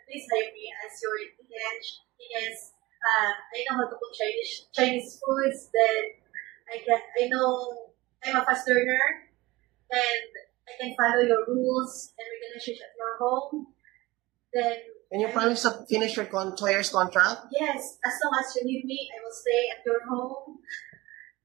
please hire me as your EH because I know how to cook Chinese foods. Then I know I'm a fast learner, and I can follow your rules and regulations at your home. Then And you I promise to finish your 2 years contract? yes, as long as you need me, I will stay at your home.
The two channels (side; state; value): left; quieter; 20.3 dB